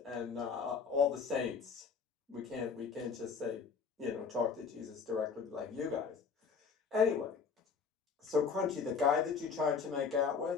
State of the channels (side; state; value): right; quieter; 5.6 dB